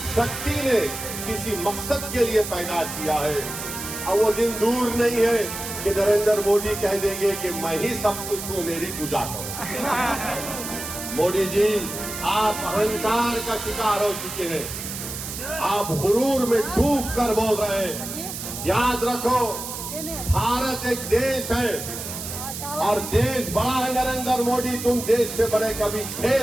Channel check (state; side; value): noise; right; hiss, 7 dB below the sound